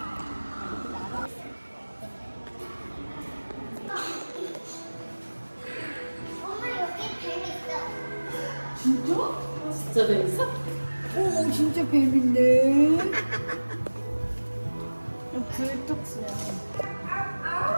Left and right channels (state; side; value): inverted; both; correlation -1.00